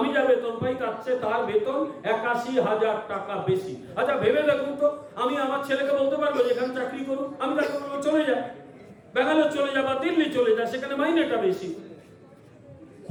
যা বেতন পাই তার চেয়ে তার বেতন 81,000 টাকা বেশি। আচ্ছা ভেবে দেখুন তো, আমি আমার ছেলেকে বলতে পারবো যেখানে চাকরি করুন, আমি তাকে বলবো চলে যায়, ব্যাঙ্গালোর চলে যা বা দিল্লি চলে যা, সেখানে মাইনেটা বেশি।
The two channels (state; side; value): identical; both; correlation 1.00